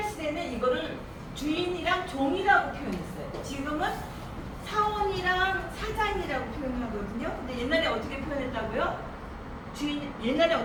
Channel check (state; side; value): identical; both; correlation 1.00